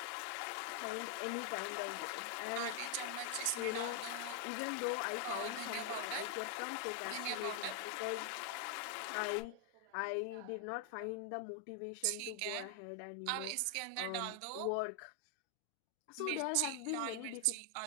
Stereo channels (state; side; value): different; both; correlation 0.00